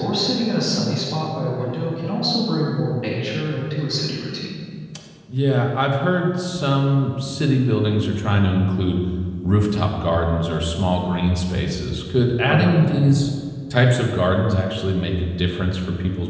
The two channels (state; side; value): identical; both; correlation 1.00